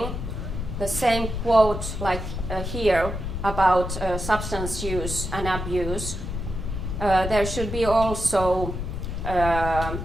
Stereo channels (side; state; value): left; noise; rumble, 5 dB below the sound